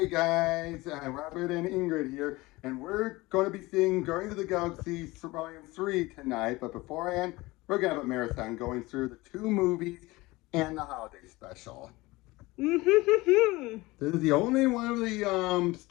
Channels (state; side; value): quieter; right; 21.1 dB